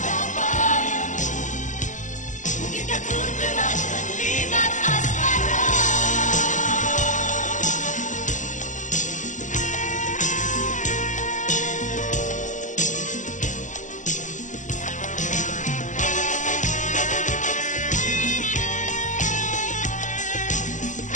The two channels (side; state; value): right; late; 0.36 ms